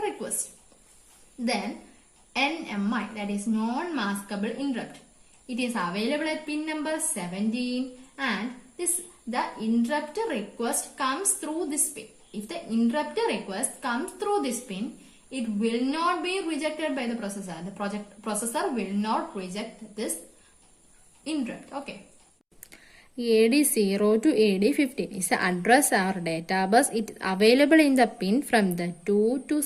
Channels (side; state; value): both; identical; correlation 1.00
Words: Then NMI, that is non-maskable interrupt. It is available at pin number 17 and the interrupt request comes through this pin. If the interrupt request comes through this pin, it will not be rejected by the processor. The processor will not reject this interrupt. Okay. AD0 to AD15 is the address or data bus. It is available in the pin from the 2 to